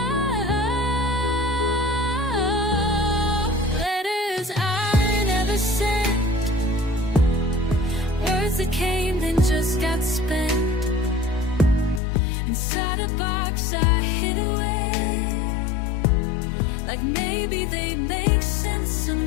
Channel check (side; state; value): right; drops out; at 12.0 s